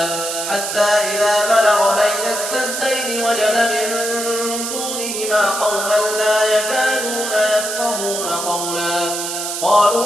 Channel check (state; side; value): noise; right; hiss, 4 dB below the sound